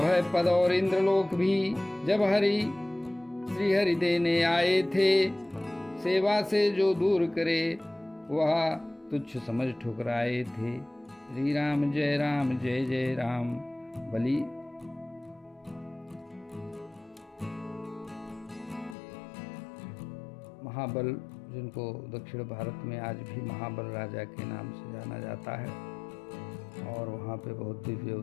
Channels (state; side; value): drops out; right; at 18.9 s